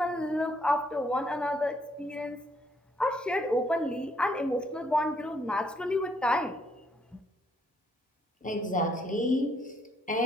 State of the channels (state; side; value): normal; both; correlation 0.70